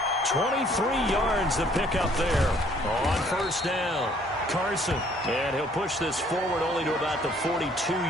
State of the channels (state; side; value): normal; both; correlation 0.61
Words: 23 yards to pick up there on first down. Carson, and he'll push this forward only to about the